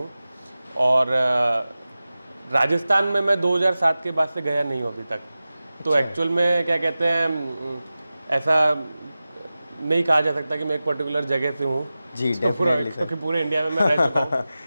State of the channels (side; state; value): both; inverted; correlation -0.96